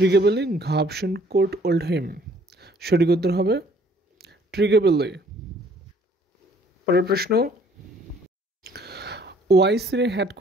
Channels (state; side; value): normal; both; correlation 0.59